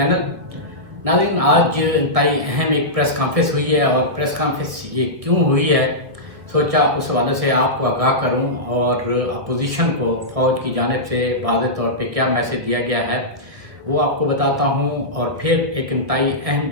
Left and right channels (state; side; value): late; left; 1.7 ms